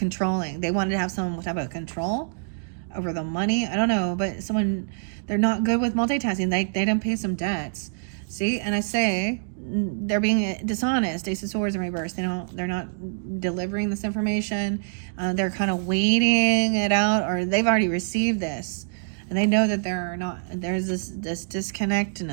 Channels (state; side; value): silent; left; digital silence